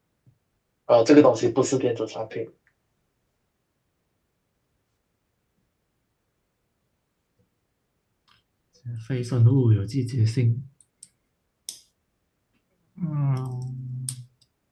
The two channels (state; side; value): identical; both; correlation 1.00